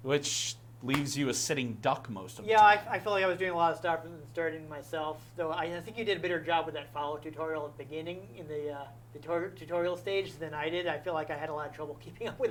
which leaves you a sitting duck most of the Yeah, time. I feel like I was doing a lot of stuff and starting myself. Though I think you did a better job with that follow tutorial at the beginning in the tutorial stage than I did. I feel like I had a lot of trouble keeping up with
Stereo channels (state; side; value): identical; both; correlation 1.00